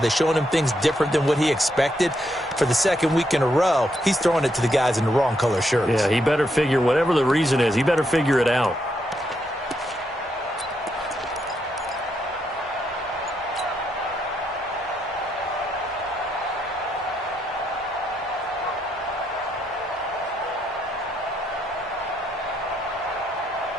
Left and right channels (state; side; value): normal; both; correlation 0.78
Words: showing him things different than what he expected? For the 2nd week in a row, he's throwing it to the guys in the wrong color shirts. Yeah, he better figure, whatever the reason is, he better figure it out.